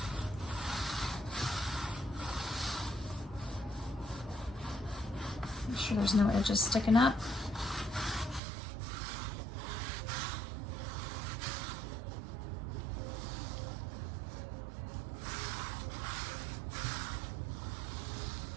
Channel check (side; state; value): left; drops out; at 8.4 s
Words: Make sure there's no edges sticking up.